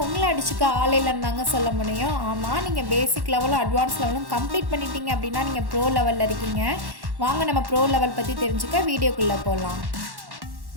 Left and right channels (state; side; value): late; left; 1.1 ms